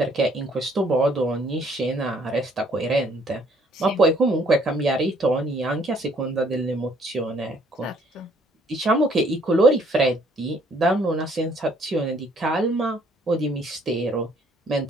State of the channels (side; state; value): both; normal; correlation 0.63